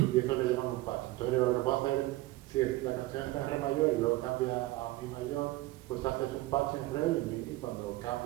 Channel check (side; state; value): left; quieter; 18.3 dB